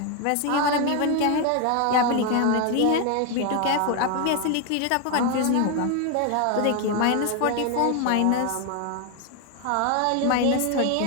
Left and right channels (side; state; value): both; different; correlation 0.01